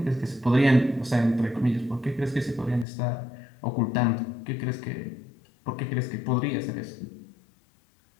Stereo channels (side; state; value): right; drops out; at 2.9 s